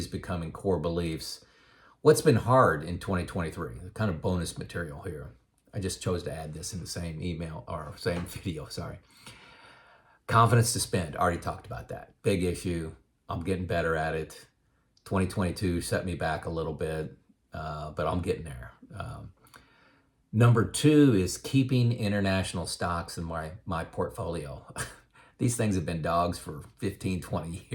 becoming core beliefs. What's been hard in 2023? Kind of bonus material here. I just chose to add this in the same email or same video, sorry. Confidence to spend, already talked about that. Big issue. I'm getting better at it. 2022 set me back a little bit, but I'm getting there. Number 2 is keeping international stocks in my portfolio. These things have been dogs for 15, 20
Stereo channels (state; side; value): identical; both; correlation 1.00